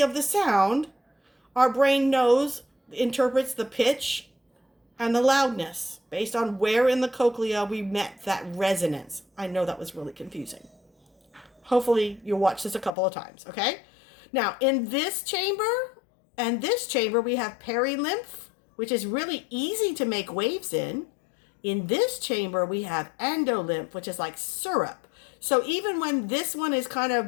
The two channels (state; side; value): drops out; right; at 12.9 s